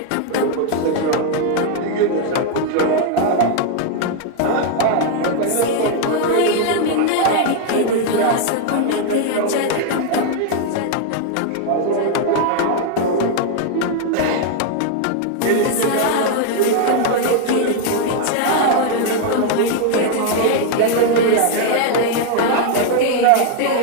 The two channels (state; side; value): different; both; correlation 0.00